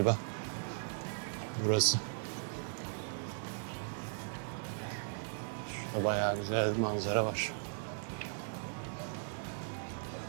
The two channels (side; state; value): left; silent; digital silence